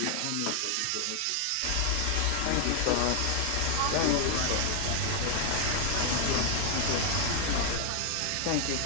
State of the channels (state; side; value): different; both; correlation 0.00